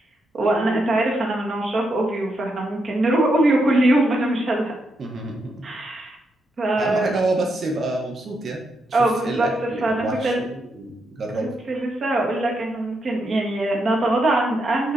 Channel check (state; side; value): normal; both; correlation 0.81